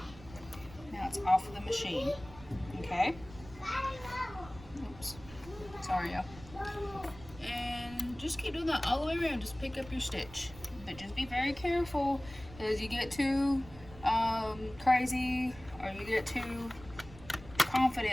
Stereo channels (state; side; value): noise; right; rumble, 17 dB below the sound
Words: Now it's off of the machine. Okay? Oops. Sorry, y'all. And just keep doing that all the way around. Just pick up your stitch. But just be very careful as you get too crazy or you get too